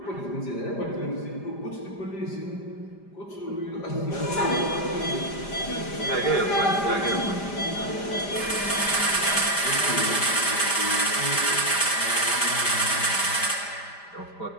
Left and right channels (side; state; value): right; late; 5.0 ms